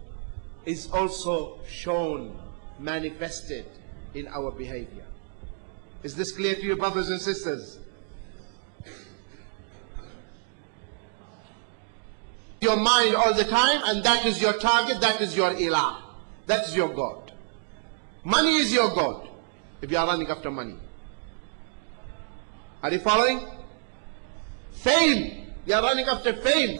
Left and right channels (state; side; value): silent; left; 60 dB below the other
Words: is also shown, manifested in our behavior. Is this clear to you, brothers and sisters? Your mind all the time, and that is your target, that is your ilah, that is your God. Money is your God if you are running after money. Are you following? Fame, you are running after fame,